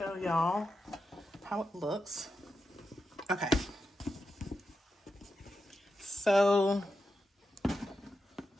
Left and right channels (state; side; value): normal; both; correlation 0.88